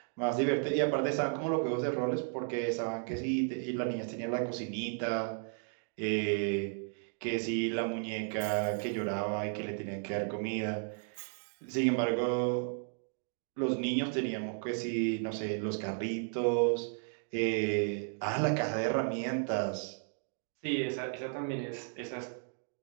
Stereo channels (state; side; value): silent; left; 55 dB below the other